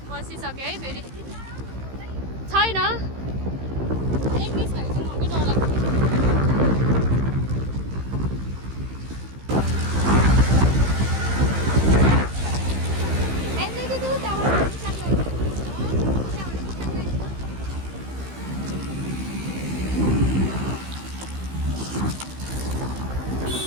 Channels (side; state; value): left; late; 15 ms